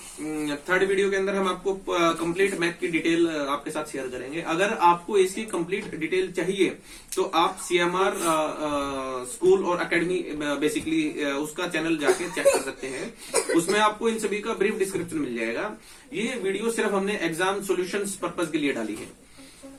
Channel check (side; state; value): both; identical; correlation 1.00